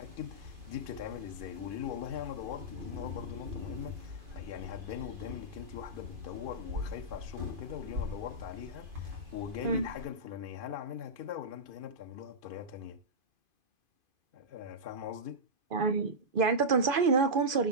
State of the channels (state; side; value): late; left; 2.5 ms